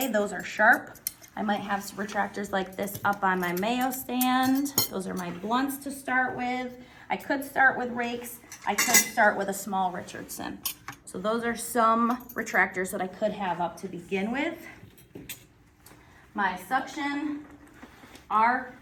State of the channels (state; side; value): identical; both; correlation 1.00